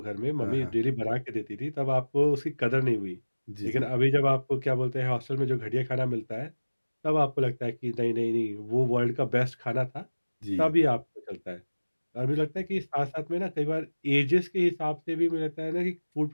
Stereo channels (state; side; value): inverted; both; correlation -1.00